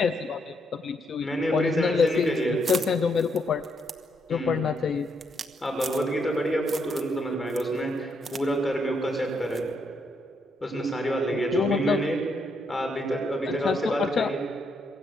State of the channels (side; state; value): both; normal; correlation 0.76